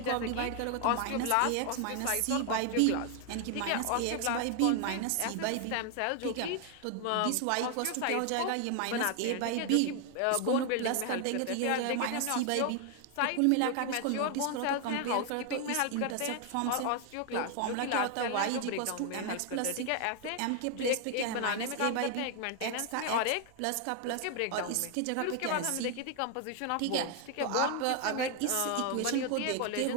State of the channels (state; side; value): different; both; correlation 0.00